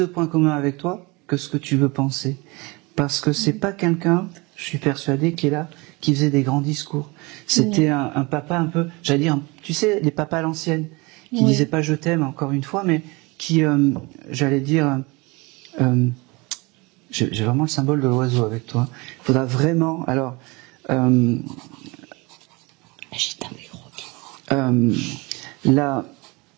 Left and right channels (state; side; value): quieter; left; 25.8 dB